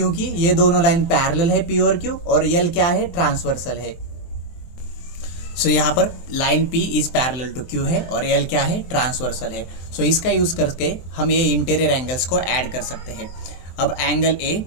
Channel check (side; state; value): right; late; 23 ms